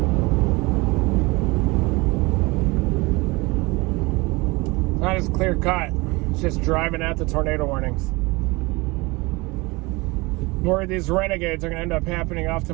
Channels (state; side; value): quieter; left; 24.2 dB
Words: Not as clear cut. It's just driving at the tornado warnings. worried these renegades are going to end up happening off to